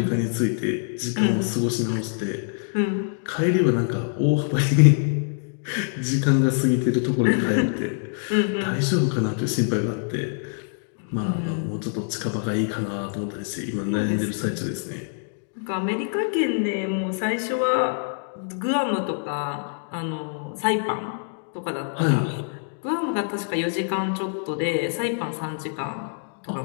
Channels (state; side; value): silent; right; 62 dB below the other